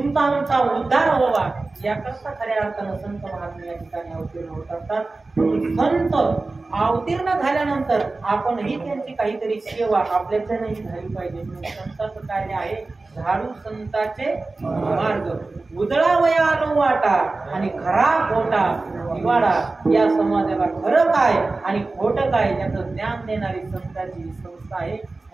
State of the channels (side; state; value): left; quieter; 3.4 dB